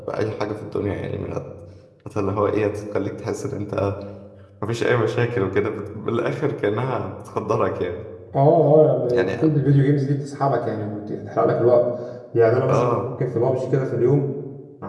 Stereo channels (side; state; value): both; identical; correlation 1.00